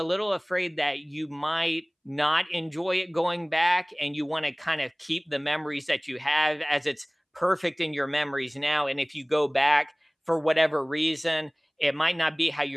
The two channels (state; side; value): identical; both; correlation 1.00